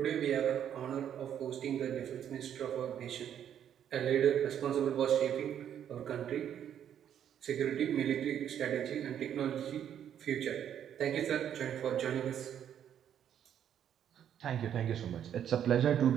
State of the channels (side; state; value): left; quieter; 9.6 dB